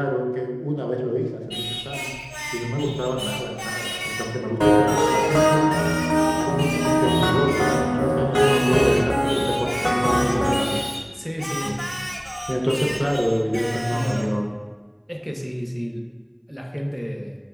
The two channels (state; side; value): identical; both; correlation 1.00